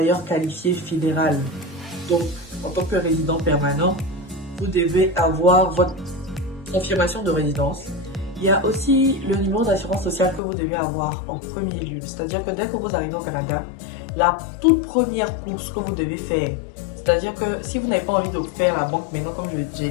qualifié fédéral, donc en tant que résident permanent, vous devez avoir votre confirmation de résidence. Il y a aussi le numéro d'assurance sociale que vous devez avoir en premier lieu, c'est-à-dire que dès que vous arrivez au Canada, la toute première course que vous devez faire, c'est-à-dire que si vous n'avez pas envie de faire la banque maintenant, comme j'ai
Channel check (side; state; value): right; drops out; at 10.4 s